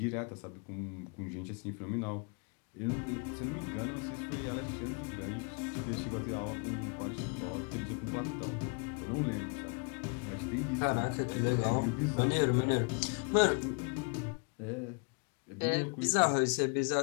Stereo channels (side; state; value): right; quieter; 36.9 dB